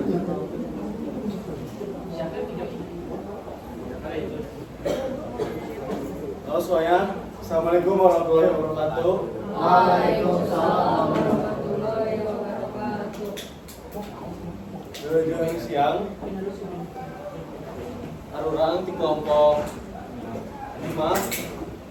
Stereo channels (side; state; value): both; identical; correlation 1.00